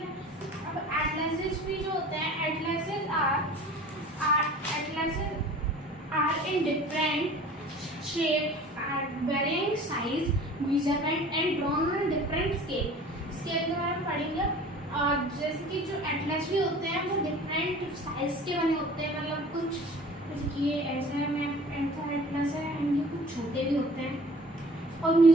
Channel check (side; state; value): both; normal; correlation 0.45